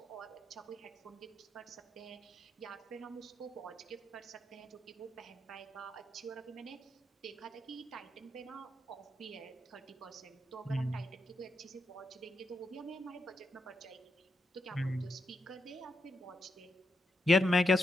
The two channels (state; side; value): normal; both; correlation 0.83